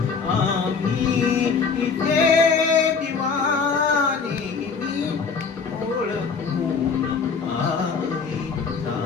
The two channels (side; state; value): right; quieter; 5.4 dB